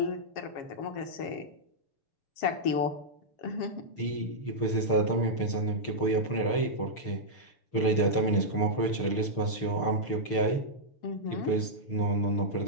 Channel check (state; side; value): late; right; 6.6 ms